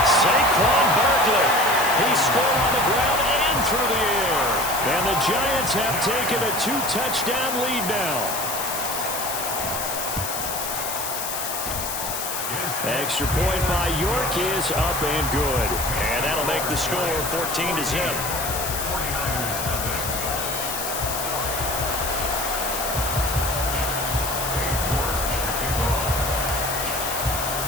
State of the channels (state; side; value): noise; left; hiss, 4 dB below the sound